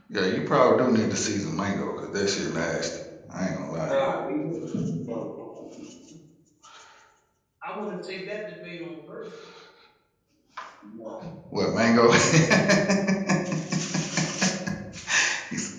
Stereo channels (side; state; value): both; identical; correlation 1.00